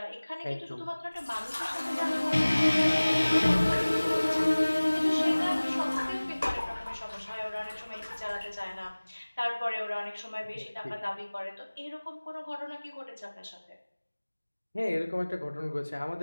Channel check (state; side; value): inverted; both; correlation -1.00